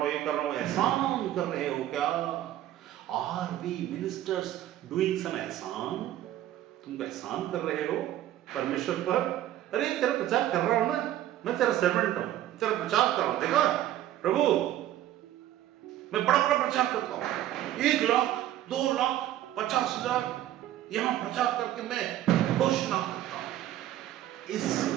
ये कर रहा हूं। एहसान कर रहे हो क्या? Are we ministers doing some एहसान? तुम एहसान कर रहे हो परमेश्वर पर? अरे तेरा प्रचार कर रहा हूं ना, मैं तेरा सर्वेंट हूं, तेरा प्रचार कर रहा हूं। देखा प्रभु, मैं बड़ा बड़ा प्रचार करता हूं, 1 लाख 2 लाख 50,000 यहां प्रचार करके मैं घोषणा करता हूं। इससे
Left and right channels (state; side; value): quieter; left; 13.0 dB